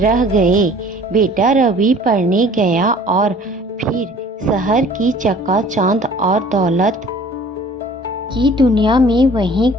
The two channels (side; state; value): both; normal; correlation 0.50